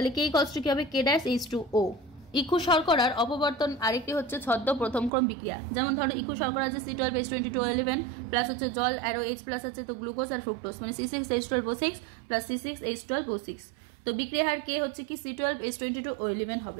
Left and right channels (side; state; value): left; drops out; at 5.1 s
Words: K কি হবে K' H2O। ইকু শর্করার অপবর্তন আরেকটি হচ্ছে ছদ্ম প্রথম ক্রম বিক্রিয়া, যেমন ধরো ইকু শর্করা আছে C12H22O11 প্লাস হচ্ছে জল অ্যারো H প্লাস আছে, তো গ্লুকোজ আর ফ্রুক্টোজ মানে C6H12O6 প্লাস C6H12O6। তো বিক্রিয়া হার K হচ্ছে কি C12H22O11